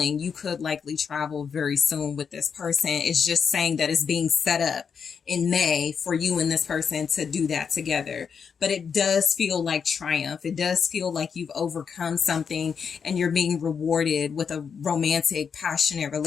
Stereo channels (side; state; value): right; quieter; 6.5 dB